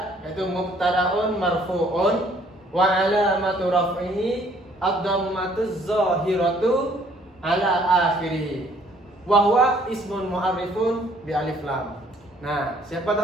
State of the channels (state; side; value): normal; both; correlation 0.61